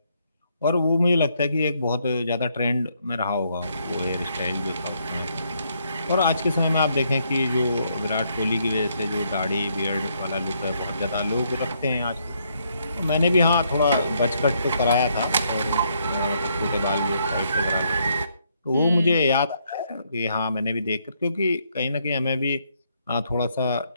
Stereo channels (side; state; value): both; inverted; correlation -0.73